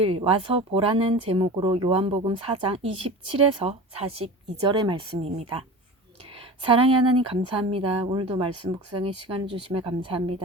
와서 보라는 제목으로 요한복음 4장 27에서 42절의 말씀입니다. 사랑의 하나님 감사합니다. 오늘도 말씀 묵상의 시간을 주심에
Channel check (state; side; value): normal; both; correlation 0.33